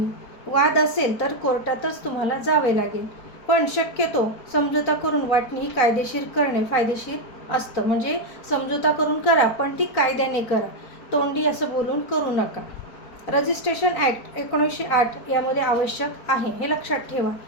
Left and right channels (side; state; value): right; late; 4.4 ms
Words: वाद असेल तर कोर्टातच तुम्हाला जावे लागेल, पण शक्यतो समझोता करून वाटणी ही कायदेशीर करणे फायदेशीर असतं. म्हणजे समझोता करून करा, पण ती कायद्याने करा. तोंडी असं बोलून करू नका. रजिस्ट्रेशन ॲक्ट 1908 यामध्ये आवश्यक आहे, हे लक्षात ठेवा.